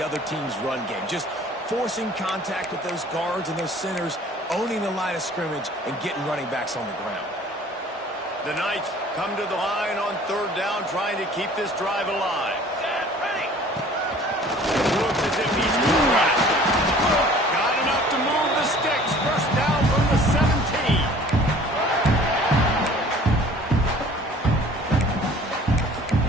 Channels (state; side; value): normal; both; correlation 0.50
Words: other team's run game. Just forcing contact with those guards and those centers, owning the line of scrimmage, and getting running backs on the ground. The Knights come to the line on third down, trying to keep this drive alive. Set, ready. Looks as if he's going to run it. Got enough to move the sticks. First down from the 17.